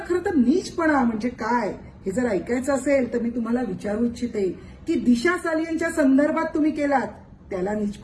तर नीचपणा म्हणजे काय हे जर ऐकायचं असेल तर मी तुम्हाला विचारू इच्छिते की दिशा सालियनच्या संदर्भात तुम्ही केलात त्याला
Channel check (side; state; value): both; identical; correlation 1.00